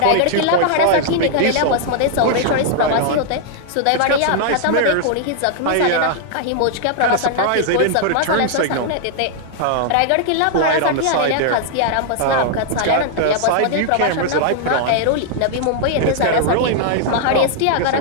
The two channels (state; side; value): different; both; correlation -0.01